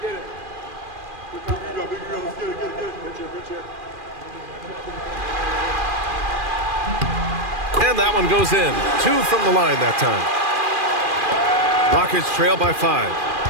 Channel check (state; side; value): late; left; 2.4 ms